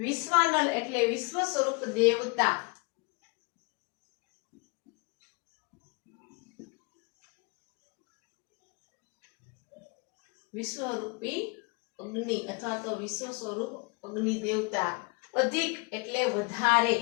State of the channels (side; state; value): right; quieter; 30.5 dB